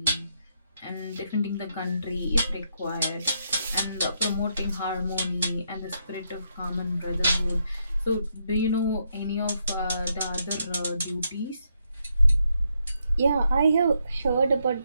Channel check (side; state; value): both; inverted; correlation -0.78